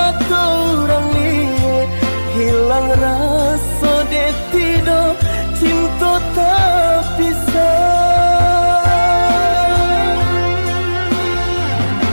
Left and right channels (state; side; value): inverted; both; correlation -1.00